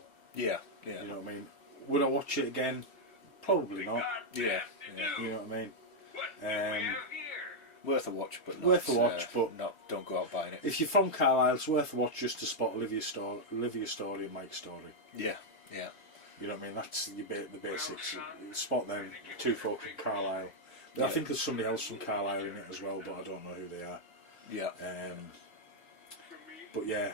Yeah. You know what I mean? Would I watch it again? Probably not. Yeah. You know what I mean? Worth a watch, but not, Worth a watch, but don't go out buying it. If you're from Carlisle, it's worth a watch just to spot Olivia's story and Mike's story. Yeah. You know what I mean? That's the basics. Spot them, two folk from Carlisle. I think there's somebody else from Carlisle in it as well, but I don't know who they are. Yeah. But yeah,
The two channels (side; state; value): right; late; 3.1 ms